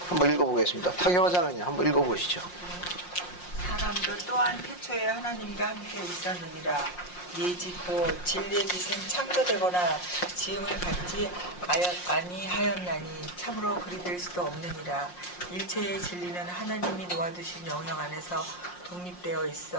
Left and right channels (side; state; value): right; late; 5.6 ms